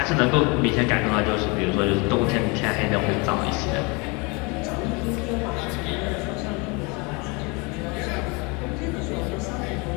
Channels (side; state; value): right; quieter; 29.1 dB